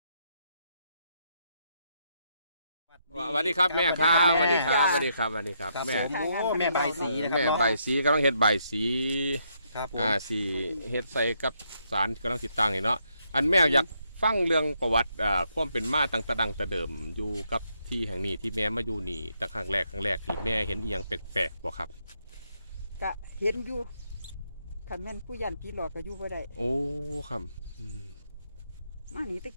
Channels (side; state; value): both; inverted; correlation -0.76